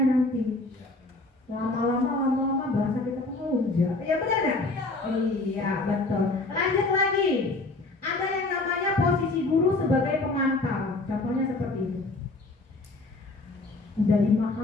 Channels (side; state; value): right; quieter; 3.1 dB